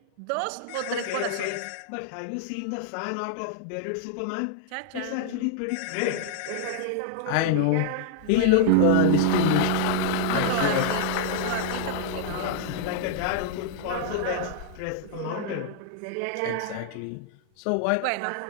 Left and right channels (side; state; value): both; different; correlation -0.01